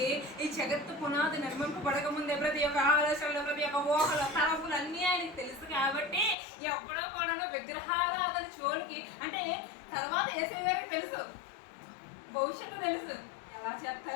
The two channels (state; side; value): drops out; right; at 6.4 s